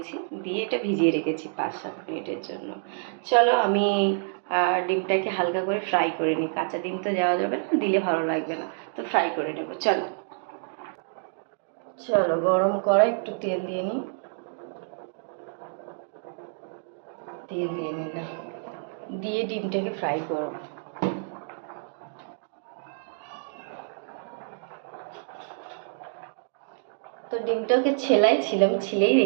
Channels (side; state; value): left; silent; digital silence